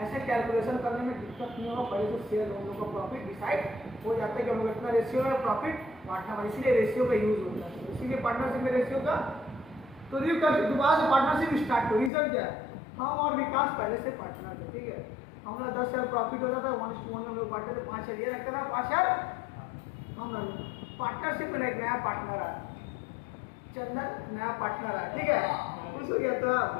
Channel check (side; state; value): right; drops out; at 12.1 s